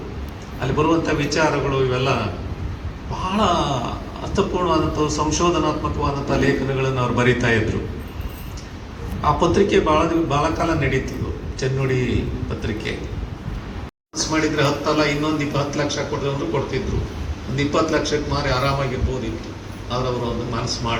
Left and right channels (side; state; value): both; identical; correlation 1.00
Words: ಅಲ್ಲಿ ಬರುವಂಥ ವಿಚಾರಗಳು ಇವೆಲ್ಲ ಬಹಳ ಅರ್ಥಪೂರ್ಣವಾದಂಥ ಸಂಶೋಧನಾತ್ಮಕವಾದಂಥ ಲೇಖನಗಳನ್ನು ಅವ್ರು ಬರೀತಾ ಇದ್ರು. ಆ ಪತ್ರಿಕೆ ಬಹಳ ಕಾಲ ನಡೀತಿದ್ವು, ಚೆನ್ನುಡಿ ಪತ್ರಿಕೆ. ಮಾಡಿದ್ರೆ 10 ಅಲ್ಲ ಇನ್ನೊಂದು 10 ಲಕ್ಷ ಕೊಡೋದು ಕೊಡ್ತಿದ್ರು. ಒಂದು 20 ಲಕ್ಷಕ್ಕೆ ಮಾರಿ ಆರಾಮಾಗಿರ್ಬೋದಿತ್ತು. ಆದ್ರೆ ಅವರು ಒಂದು ಮನಸ್ಸು